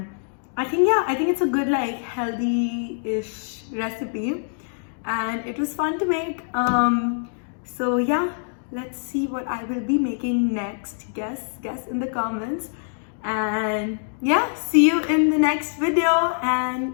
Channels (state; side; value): silent; right; digital silence